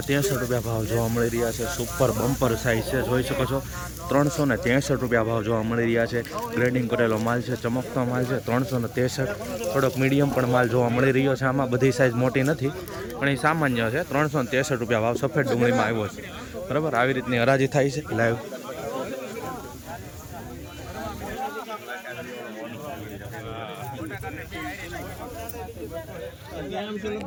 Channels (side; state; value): both; identical; correlation 1.00